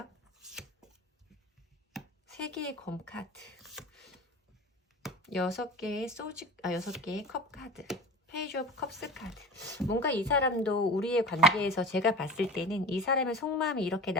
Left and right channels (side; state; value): both; normal; correlation 0.35